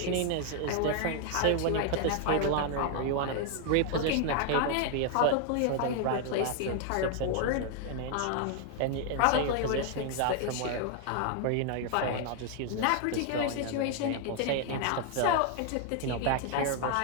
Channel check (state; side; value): different; both; correlation 0.00